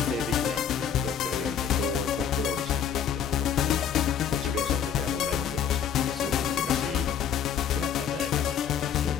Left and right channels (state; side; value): quieter; right; 8.3 dB